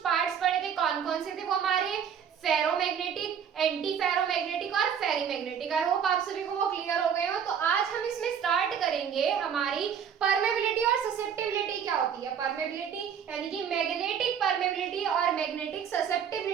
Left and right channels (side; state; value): left; quieter; 7.9 dB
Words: पार्ट्स पढ़े थे। कौन कौन से थे वो हमारे, फेरोमैग्नेटिक, एंटी फेरोमैग्नेटिक और फेरीमैग्नेटिक। आई होप आप सभी को वो क्लियर हो गए हो। तो आज हम इसमें स्टार्ट करेंगे हमारी परमेबिलिटी और ससेप्टिबिलिटी क्या होती है। परमेबिलिटी यानी कि मैग्नेटिक परमेबिलिटी और मैग्नेटिक